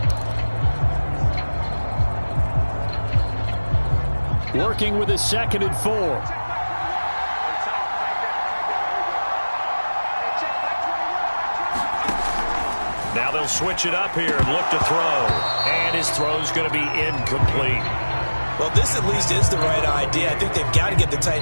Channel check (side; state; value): both; inverted; correlation -1.00